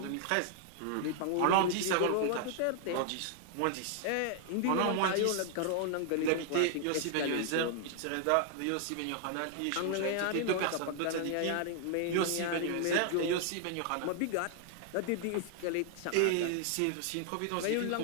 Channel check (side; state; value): both; different; correlation 0.00